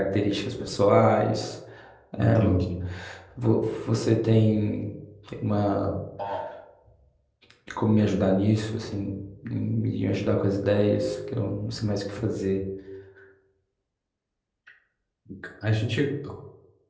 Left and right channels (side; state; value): both; identical; correlation 1.00